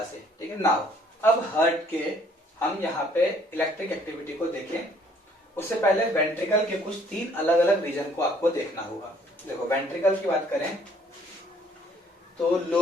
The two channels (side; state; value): both; normal; correlation 0.61